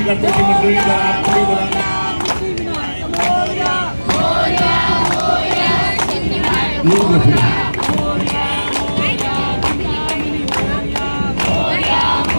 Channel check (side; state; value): both; inverted; correlation -1.00